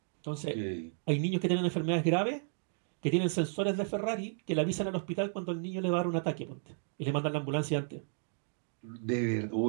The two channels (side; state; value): left; silent; digital silence